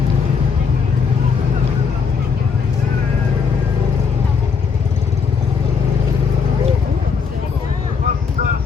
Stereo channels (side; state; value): right; quieter; 5.7 dB